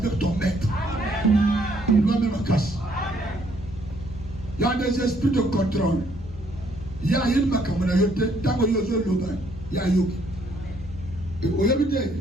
ton maître. Il doit même casse. Il y a des esprits de contrôle. Il y a une macamayote, tant que yozo loba, il y a yogi. Et au yabite.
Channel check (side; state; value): both; normal; correlation 0.67